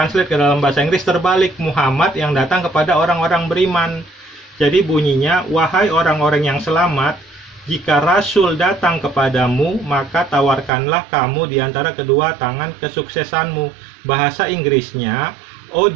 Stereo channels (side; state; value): left; drops out; at 10.7 s